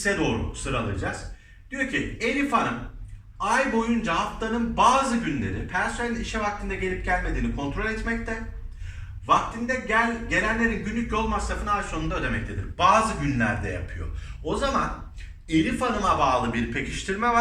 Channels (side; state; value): both; identical; correlation 1.00